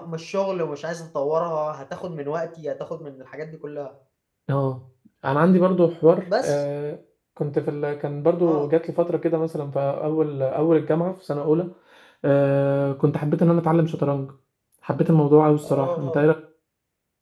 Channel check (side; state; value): both; identical; correlation 1.00